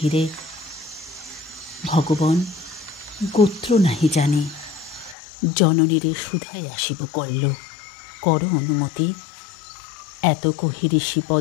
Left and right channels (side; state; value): right; drops out; at 5.2 s